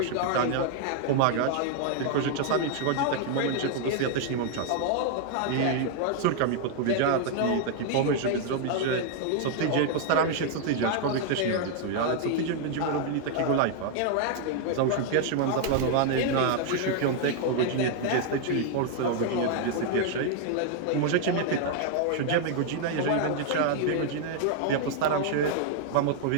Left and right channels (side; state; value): both; different; correlation 0.00